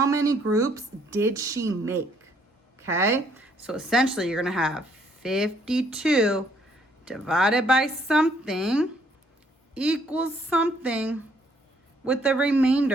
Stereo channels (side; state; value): both; normal; correlation 0.67